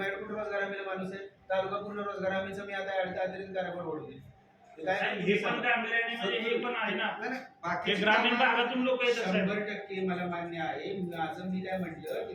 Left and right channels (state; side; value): identical; both; correlation 1.00